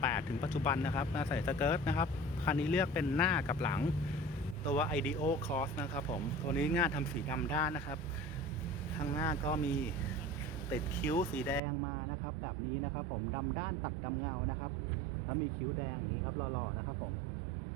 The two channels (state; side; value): drops out; left; at 11.6 s